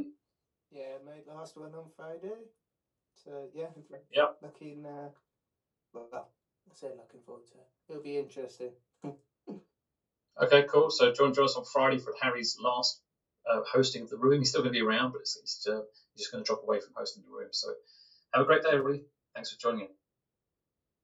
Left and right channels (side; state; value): both; identical; correlation 1.00